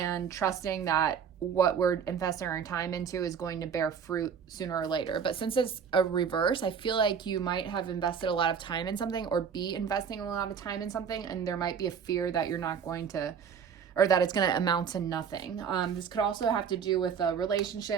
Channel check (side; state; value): left; quieter; 7.1 dB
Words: trusting that what we're investing our time into is going to bear fruit sooner or later. But since it's a reverse, I feel like you might have invested a lot of time in something, or be investing a lot of time in something, and there might be a fear that you're not going to, or that it's going to amount to nothing. This could also have to do with a